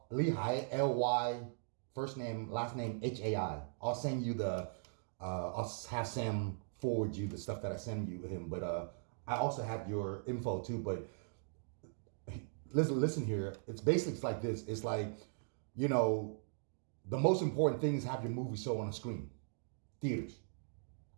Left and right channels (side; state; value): left; silent; digital silence